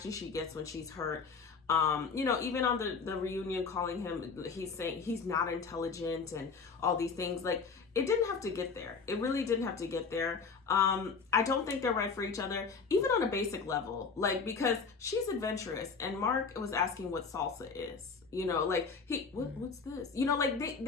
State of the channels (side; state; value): right; quieter; 5.2 dB